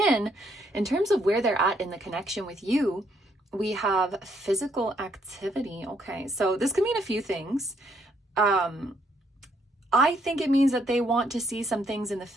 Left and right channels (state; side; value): normal; both; correlation 0.71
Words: in terms of where they're at in the connection with you, we have physical activity. Okay, so this could mean a few things. I think it means that they want to see some things in the